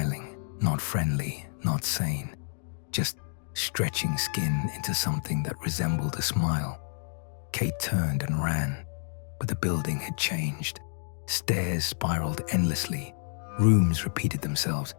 not friendly, not sane, just stretching skin into something that resembled a smile. Kate turned and ran, but the building had changed. Stairs spiraled endlessly. Rooms repeated themselves.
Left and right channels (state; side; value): silent; right; digital silence